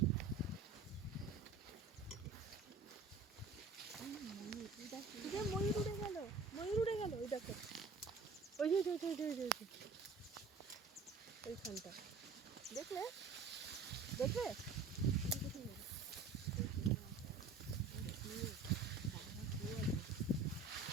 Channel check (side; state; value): left; quieter; 4.2 dB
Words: ময়ূর উড়ে গেল, ময়ূর উড়ে গেল, ওই দেখো, ওই যে ওইখানটা দেখলে, দেখবে